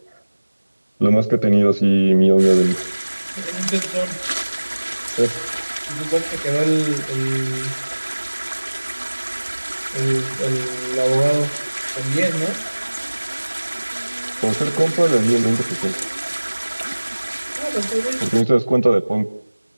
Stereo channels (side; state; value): both; inverted; correlation -1.00